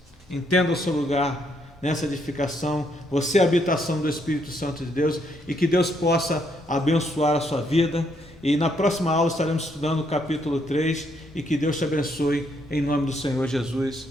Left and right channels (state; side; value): normal; both; correlation 0.73